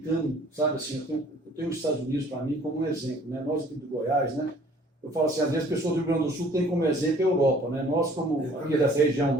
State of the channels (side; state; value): both; normal; correlation 0.54